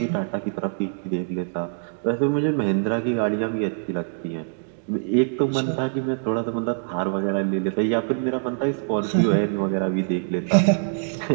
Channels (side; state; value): left; silent; digital silence